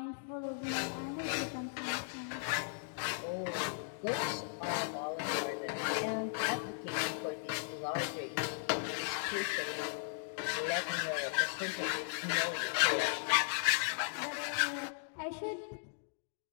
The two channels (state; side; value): silent; right; digital silence